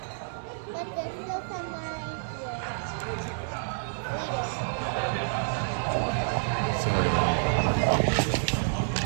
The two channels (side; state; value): left; silent; 59 dB below the other